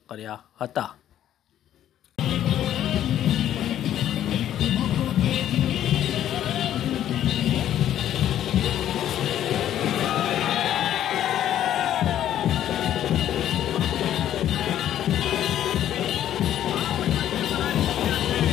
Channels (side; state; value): right; quieter; 11.4 dB